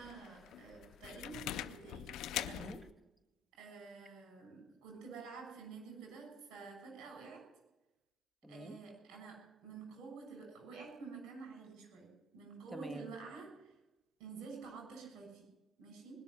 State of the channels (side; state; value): both; normal; correlation 0.50